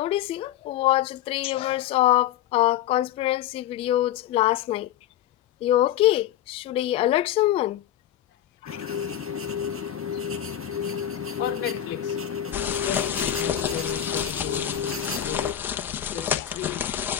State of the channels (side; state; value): right; quieter; 11.4 dB